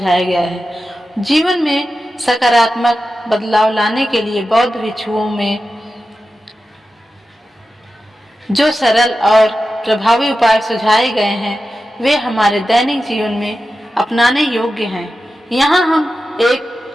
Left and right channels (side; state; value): both; normal; correlation 0.92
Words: गया है। जीवन में सकारात्मक बदलाव लाने के लिए बौद्ध भिक्षुओं में जो सरल और प्रभावी उपाय सुझाए गए हैं वे हमारे दैनिक जीवन में अपनाने योग्य हैं। यहाँ हम एक